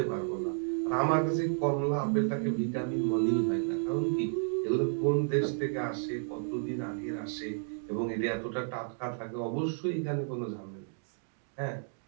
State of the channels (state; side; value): silent; left; digital silence